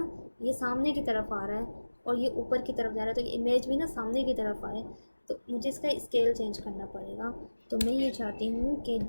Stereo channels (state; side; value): inverted; both; correlation -1.00